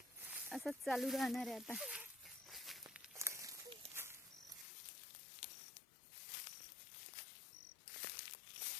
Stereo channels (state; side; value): drops out; right; at 4.7 s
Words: असंच चालू राहणार आहे आता.